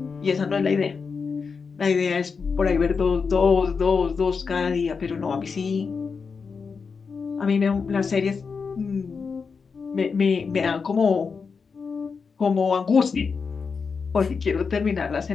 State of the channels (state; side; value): quieter; right; 5.3 dB